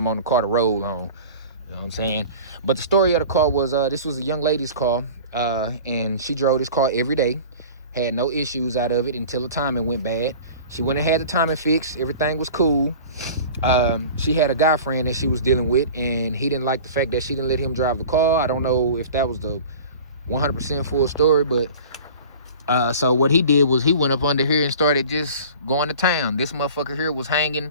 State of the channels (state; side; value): inverted; both; correlation -0.40